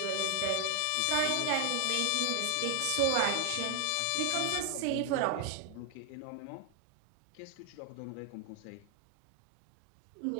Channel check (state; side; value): different; both; correlation 0.00